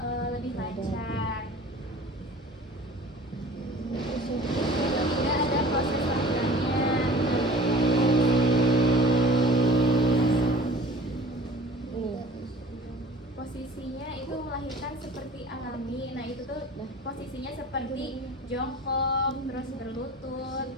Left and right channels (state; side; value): normal; both; correlation 0.45